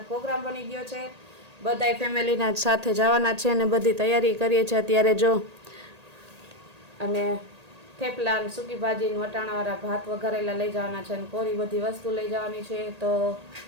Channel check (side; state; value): left; late; 1.8 ms